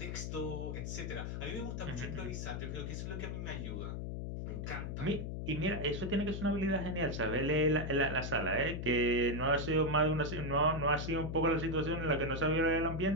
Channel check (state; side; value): noise; left; hum, 4 dB below the sound